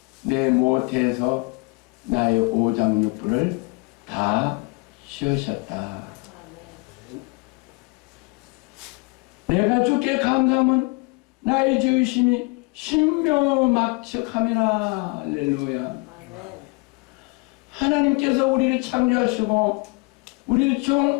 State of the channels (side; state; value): right; quieter; 29.4 dB